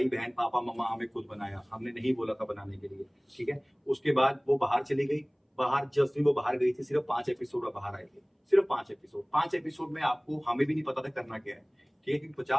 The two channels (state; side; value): identical; both; correlation 1.00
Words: बहन पापा मम्मा हमें खुद बनाया, हमने नहीं बोला था बनाने के लिए, ठीक है। उसके बाद वो बाहर चली गई, बाहर जिस दिन वो बाहर गई थी सिर्फ 5 एपिसोड बाहर आए थे, सिर्फ 5 एपिसोड में आपको हमें भी नहीं पता था करना क्या है, ठीक है, क्योंकि